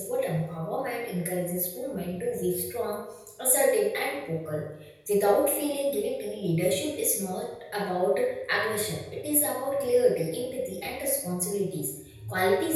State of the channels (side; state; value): both; identical; correlation 1.00